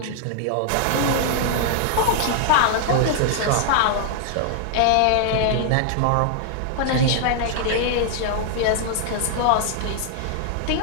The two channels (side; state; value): both; different; correlation -0.01